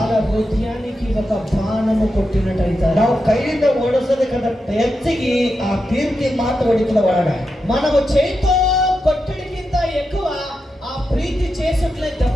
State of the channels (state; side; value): normal; both; correlation 0.88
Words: హృదయానికి ఒక బాణము కొట్టినట్టయితే, ನಾವು ಕೈಯಿಂದ ಓಡಿಸೋದಕ್ಕಂತ ಹೆಚ್ಚಿಗೆ ಆ ಕೀರ್ತಿ ಮಾತು ಹೊಡಿತದ ಒಳಗ. మనము చేతితో కొట్టడికింత ఎక్కువ ఆ ప్రీతి చేసిట్లే